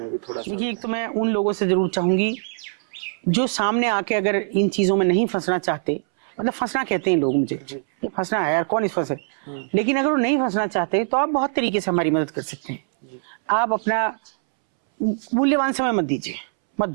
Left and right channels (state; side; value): silent; left; 64 dB below the other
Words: भी थोड़ा सा। देखिए एक तो मैं उन लोगों से जरूर चाहूंगी जो सामने आके अगर इन चीजों में नहीं फंसना चाहते, मतलब फंसना कहते हैं लोग मुझे, जी ये फंसना है यार, कौन इस फंसे, लेकिन अगर वो नहीं फंसना चाहते तो आप बहुत तरीके से हमारी मदद कर सकते हैं जी। आप अपना मूल्यवान समय मत दीजिए, मत